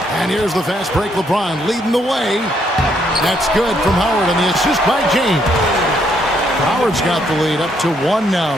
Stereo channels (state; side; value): normal; both; correlation 0.72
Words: And here's the fast break. LeBron leading the way. That's good from Howard, and the assist by James. Howard's got the lead up to 1 now